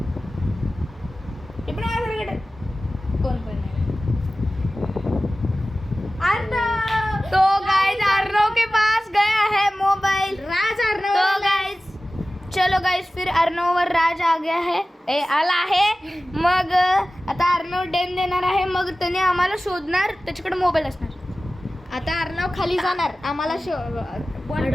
ते पण माझ्यासारखं कोण पण नाही। तो गाइस अर्णव के पास गया है मोबाइल। राज अर्णव। तो गाइस चलो गाइस, फिर अर्णववर राज आ गया है, आला आहे। मग आता अर्णव डेन देणार आहे, मग त्याने आम्हाला शोधणार, त्याच्याकडे मोबाईल असणार। आता अर्णव खाली जाणार, आम्हाला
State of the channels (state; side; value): normal; both; correlation 0.96